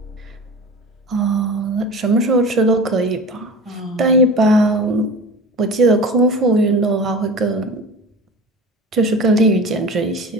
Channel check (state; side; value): normal; both; correlation 0.35